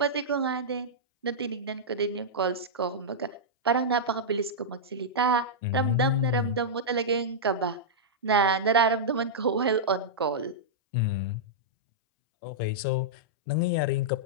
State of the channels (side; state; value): both; normal; correlation -0.10